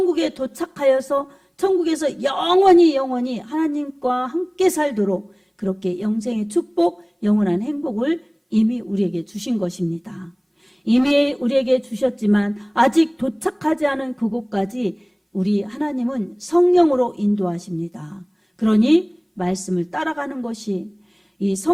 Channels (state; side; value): identical; both; correlation 1.00